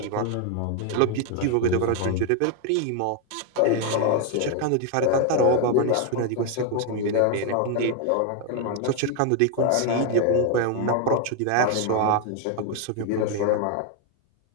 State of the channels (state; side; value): different; both; correlation 0.01